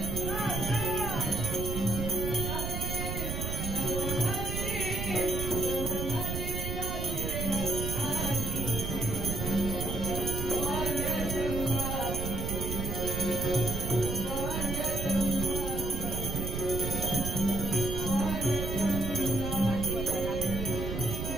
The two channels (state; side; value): noise; right; rumble, 3 dB below the sound